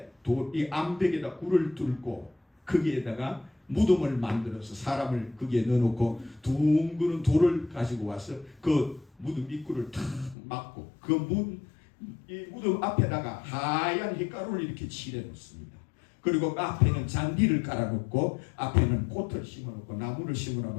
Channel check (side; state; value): right; drops out; at 10.4 s